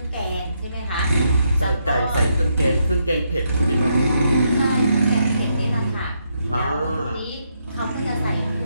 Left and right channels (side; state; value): both; inverted; correlation -0.78